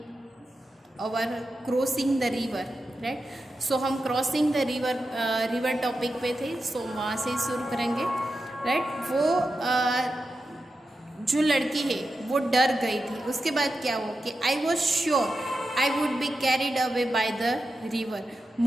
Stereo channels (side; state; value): both; normal; correlation 0.90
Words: our crossing the river, right? So हम crossing the river topic पे थे, so वहाँ से शुरू करेंगे, right? वो जो लड़की है वो डर गई थी. उसके बाद क्या हुआ कि I was sure I would be carried away by the river.